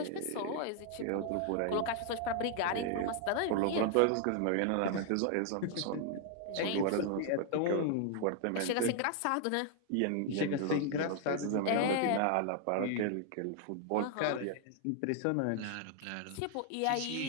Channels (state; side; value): different; both; correlation 0.00